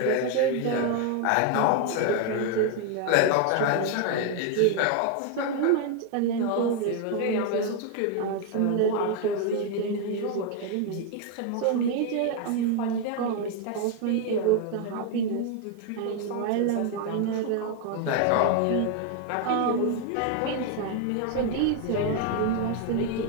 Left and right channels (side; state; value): both; different; correlation 0.01